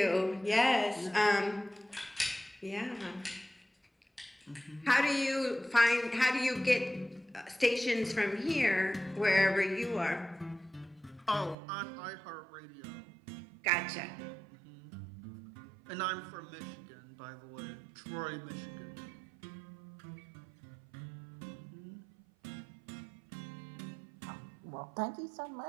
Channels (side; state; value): left; drops out; at 11.6 s